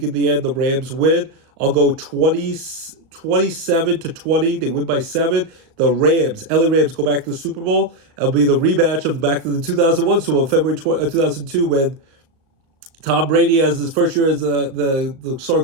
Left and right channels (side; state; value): left; late; 36 ms